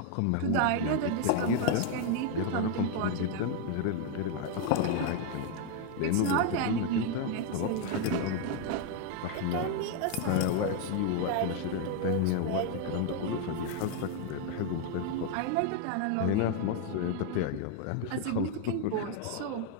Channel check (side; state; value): both; different; correlation 0.01